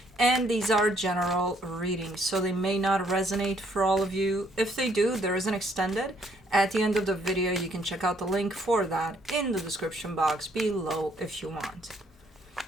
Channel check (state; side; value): normal; both; correlation 0.67